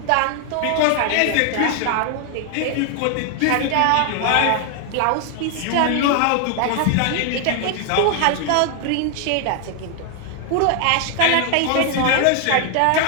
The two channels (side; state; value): both; different; correlation 0.00